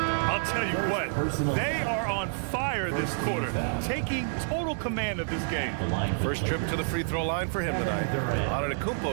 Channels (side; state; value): left; silent; 59 dB below the other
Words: I'll tell you what, they are on fire this quarter, taking total command of this game. First trip to the free throw line for him tonight.